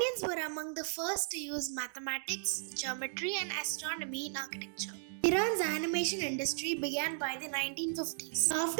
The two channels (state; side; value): silent; left; digital silence